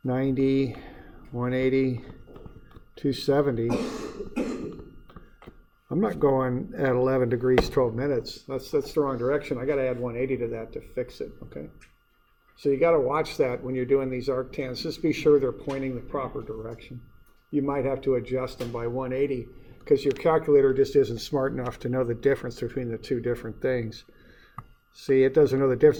90, 180, 270, I'm not going at 11 degrees, 12 minutes. That's the wrong direction. I got to add 180 to that to fix it, okay? So you got to watch that when you're doing these arctans. Just be sure they're pointing the proper direction. You might have to adjust them by 180 because your calculator just isn't smart enough to know the difference between the two different things. See, it doesn't know the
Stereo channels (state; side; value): identical; both; correlation 1.00